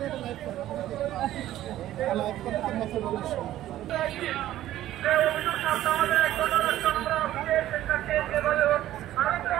লাইভ করেন, লাইভ করতে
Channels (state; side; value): quieter; left; 13.6 dB